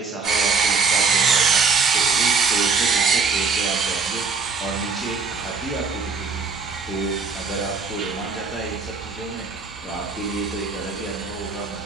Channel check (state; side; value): quieter; left; 4.7 dB